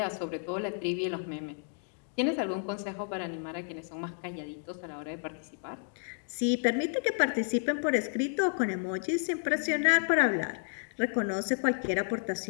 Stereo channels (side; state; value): right; silent; 57 dB below the other